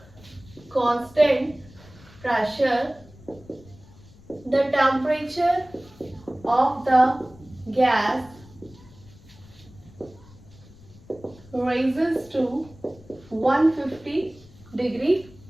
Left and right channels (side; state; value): left; noise; rumble, 23 dB below the sound